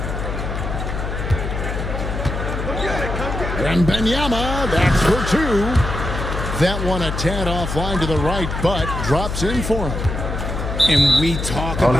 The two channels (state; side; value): noise; left; hum, 4 dB below the sound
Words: And Wembanyama, that's for two. That one a tad offline to the right, but drops in for him. And we talk I